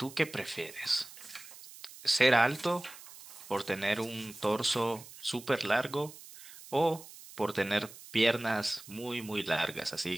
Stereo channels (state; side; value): noise; right; hiss, 17 dB below the sound